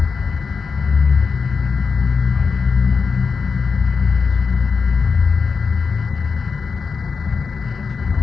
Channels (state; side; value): quieter; right; 5.2 dB